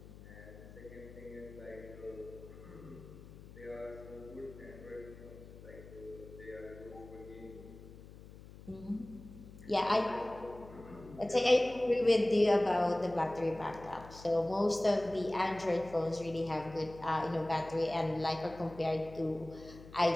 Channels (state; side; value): noise; left; hum, 17 dB below the sound